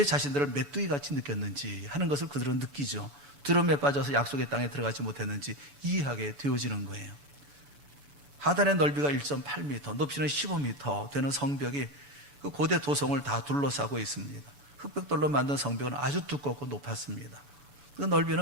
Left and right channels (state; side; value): late; left; 7.0 ms